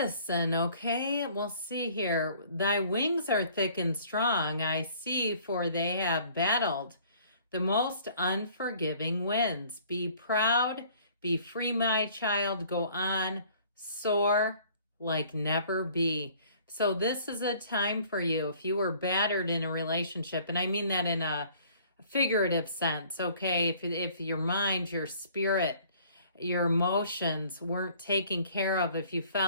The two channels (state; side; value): inverted; both; correlation -0.55